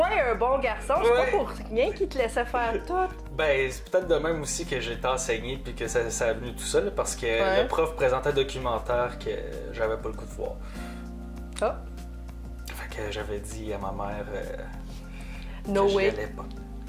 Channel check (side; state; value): both; identical; correlation 1.00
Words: un bon garçon, c'est Ouais. pas pour rien qu'il te laissait faire tout. Ben, c'est peut-être de même aussi que j'ai été enseigné puis que ça est venu tout seul parce que Ouais. le prof présentait un documentaire que j'avais pas le goût de voir. Ah, Fait que j'avais dit à ma mère no que je way. l'allais